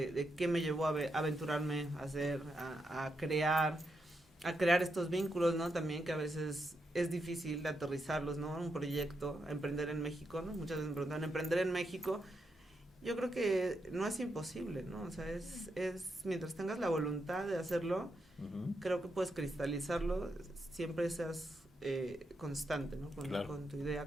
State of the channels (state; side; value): normal; both; correlation 0.83